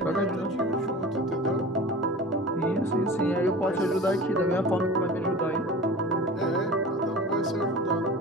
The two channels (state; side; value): normal; both; correlation 0.37